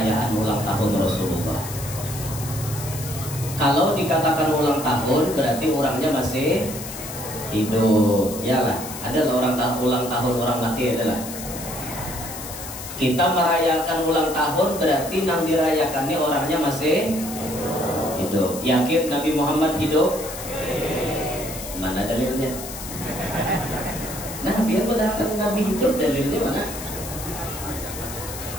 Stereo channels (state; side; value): noise; left; hiss, 10 dB below the sound